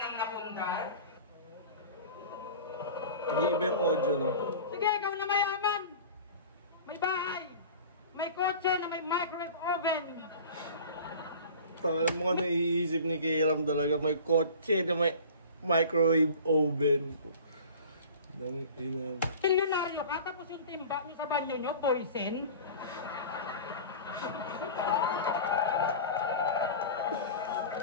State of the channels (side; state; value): both; inverted; correlation -0.39